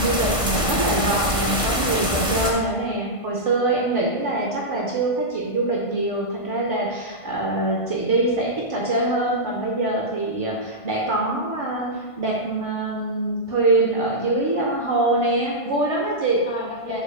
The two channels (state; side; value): late; right; 1.5 ms